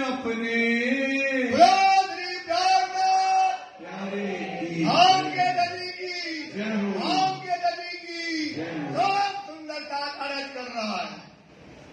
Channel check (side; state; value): both; identical; correlation 1.00